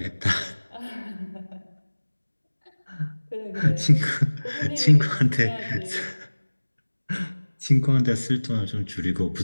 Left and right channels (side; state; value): both; inverted; correlation -1.00